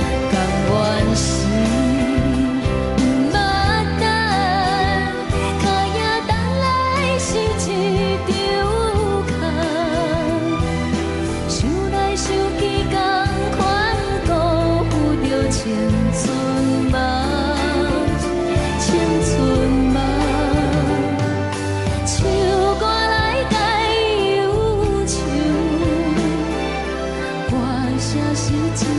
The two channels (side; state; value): both; identical; correlation 1.00